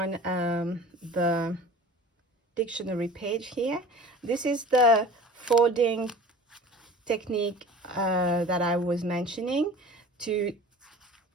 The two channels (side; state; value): both; normal; correlation 0.42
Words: the dictionary page here. This is the folding technique that I was mentioning to